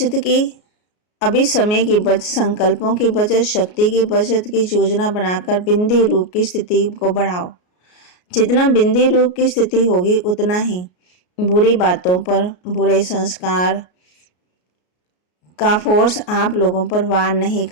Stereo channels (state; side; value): late; right; 33 ms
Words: की, अभी समय की बचत, संकल्पों की बचत, शक्ति की बचत की योजना बनाकर बिंदी रूप की स्थिति को बढ़ाओ। जितना बिंदी रूप की स्थिति होगी उतना ही बुरी बातों पर, बुरे संस्कार का फोर्स आप लोगों पर वार नहीं